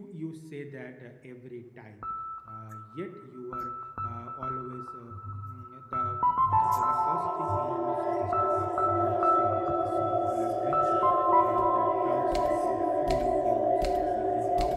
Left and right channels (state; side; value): identical; both; correlation 1.00